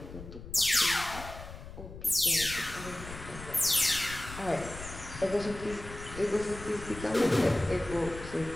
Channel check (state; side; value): noise; left; rumble, 13 dB below the sound